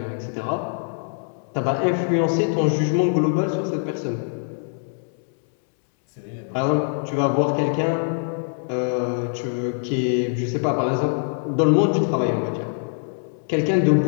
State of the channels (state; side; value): silent; right; 63 dB below the other